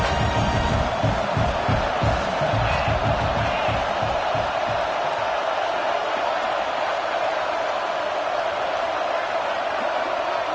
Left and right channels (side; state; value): both; identical; correlation 1.00